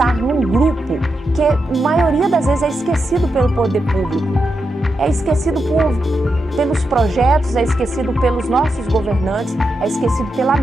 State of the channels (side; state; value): both; normal; correlation 0.86